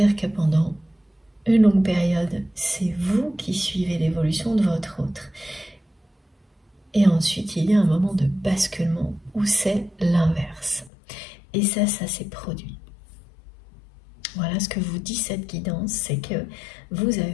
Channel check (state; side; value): drops out; right; at 10.9 s